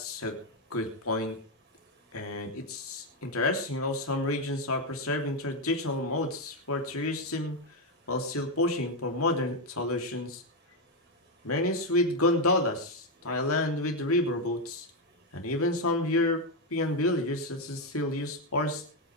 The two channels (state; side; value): normal; both; correlation 0.05